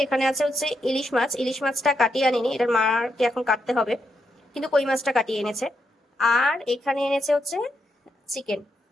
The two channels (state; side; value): normal; both; correlation 0.82